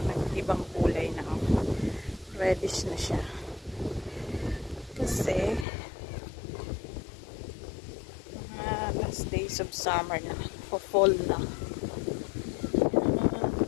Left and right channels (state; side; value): drops out; right; at 5.7 s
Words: nag-ibang kulay na, reddish na siya kasi last days of summer na, fall na.